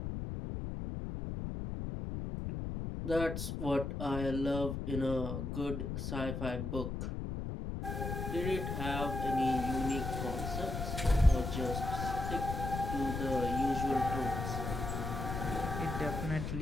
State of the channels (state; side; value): noise; left; rumble, 4 dB below the sound